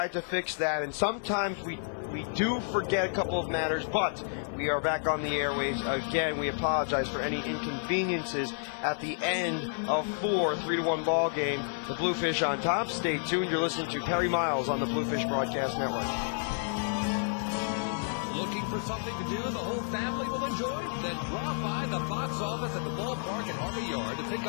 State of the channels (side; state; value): right; silent; digital silence